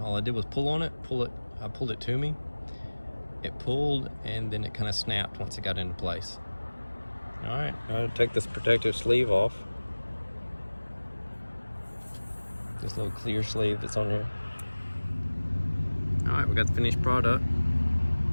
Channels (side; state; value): both; inverted; correlation -1.00